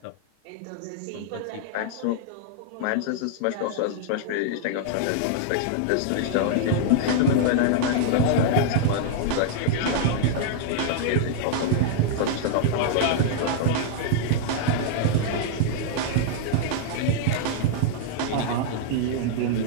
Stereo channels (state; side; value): different; both; correlation -0.01